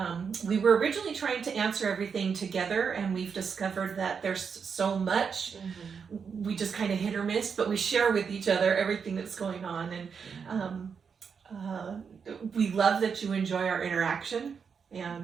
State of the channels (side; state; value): left; quieter; 6.2 dB